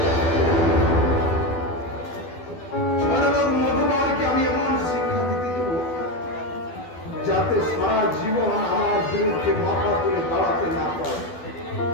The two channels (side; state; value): right; late; 12 ms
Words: সরলোক মধুবারকে আমি এমন শিক্ষা দিতে দেব, যাতে সারা জীবন আমার বিরুদ্ধে মাথা তুলে দাঁড়াতে না পারে।